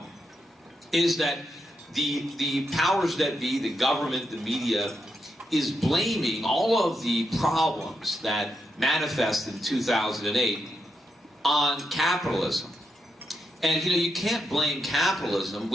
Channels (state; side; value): normal; both; correlation 0.82